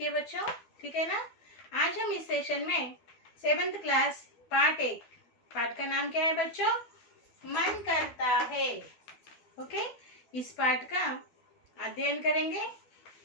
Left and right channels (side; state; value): right; late; 12 ms